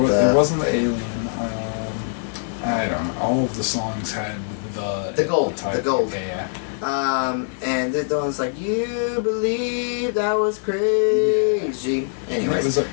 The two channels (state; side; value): silent; right; 60 dB below the other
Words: It wasn't the Alien. I don't know. All of the songs had the gold. title. The gold. Yeah. And the one's like, you believe that was crazy. Anyways.